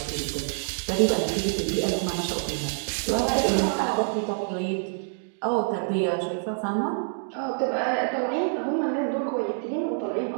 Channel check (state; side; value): silent; left; digital silence